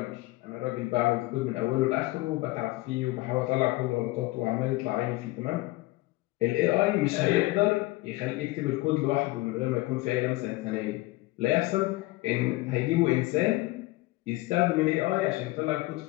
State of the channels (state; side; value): quieter; right; 20.4 dB